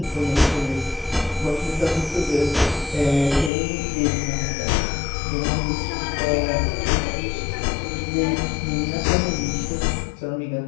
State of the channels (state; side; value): drops out; right; at 3.5 s